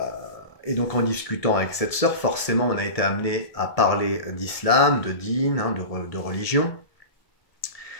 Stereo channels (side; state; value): right; late; 1.7 ms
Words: donc en discutant avec cette sœur, forcément on a été amené à parler d'islam, de dîn, de religion.